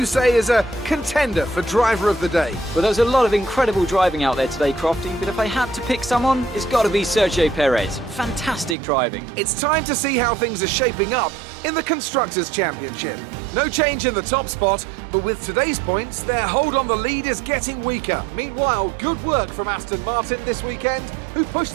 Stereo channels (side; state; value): left; drops out; at 8.8 s